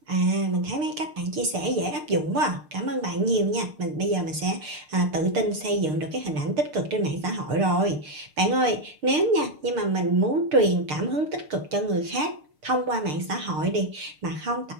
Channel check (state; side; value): late; left; 6.6 ms